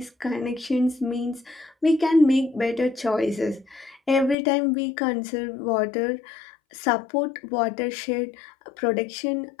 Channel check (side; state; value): right; drops out; at 4.4 s